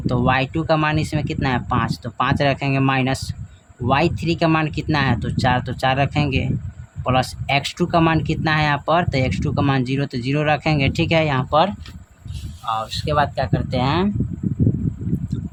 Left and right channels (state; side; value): identical; both; correlation 1.00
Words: तो y2 का मान इसमें कितना है 5, तो 5 रखेंगे, माइनस y3 का मान कितना है तो 4 रखेंगे, प्लस x2 का मान कितना है यहाँ पर तो x2 का मान 0 तो 0 रखेंगे। ठीक है, यहाँ पर और उसके बाद क्या करते हैं